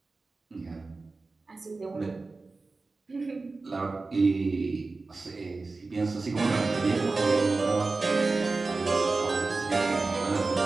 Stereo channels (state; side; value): quieter; left; 3.7 dB